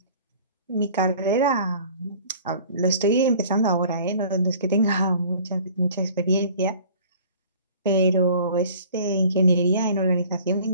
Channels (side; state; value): both; inverted; correlation -0.49